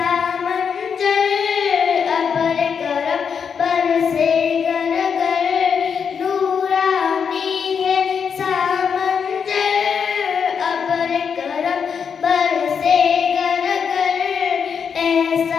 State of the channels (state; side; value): quieter; right; 6.7 dB